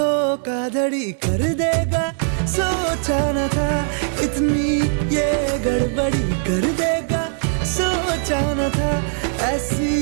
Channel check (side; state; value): left; silent; digital silence